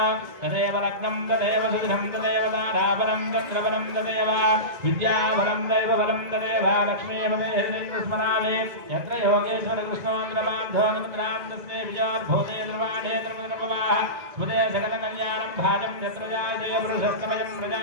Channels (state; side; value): late; left; 2.0 ms